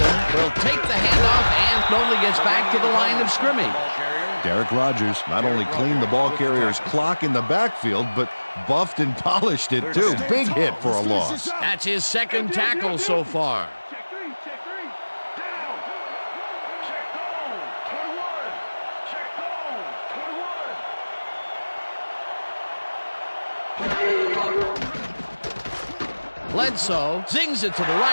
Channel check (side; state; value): both; inverted; correlation -1.00